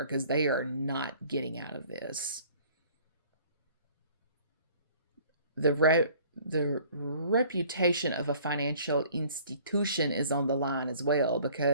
because they are not getting out of this. The reputation of a financial institution is on the line as well,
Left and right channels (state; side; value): inverted; both; correlation -0.53